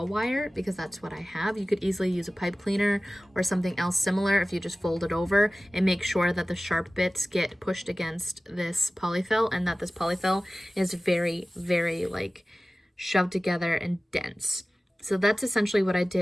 wire because that's what I have. You could easily use a pipe cleaner or something else similar if you just fold it over and make sure that the sharp bits get pushed against this polyfill and that this polyfill is very, very like shoved together and dense. So that's essentially what I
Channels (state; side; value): normal; both; correlation 0.97